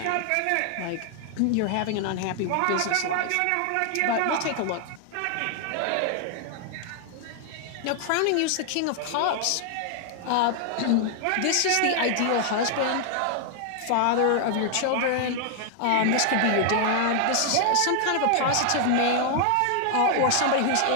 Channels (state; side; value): different; both; correlation 0.00